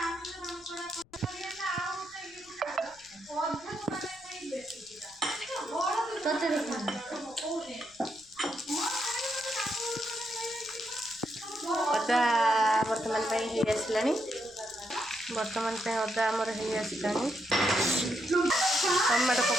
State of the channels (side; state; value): left; noise; rumble, 29 dB below the sound